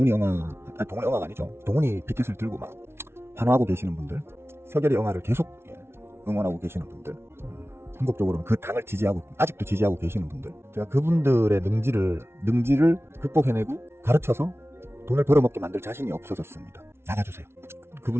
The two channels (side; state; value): left; late; 0.12 ms